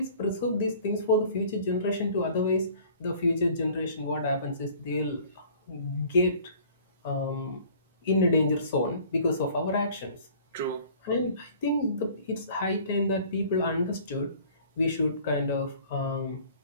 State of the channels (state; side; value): inverted; both; correlation -0.50